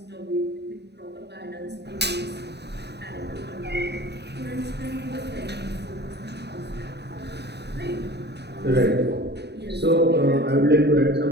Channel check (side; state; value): left; late; 0.49 ms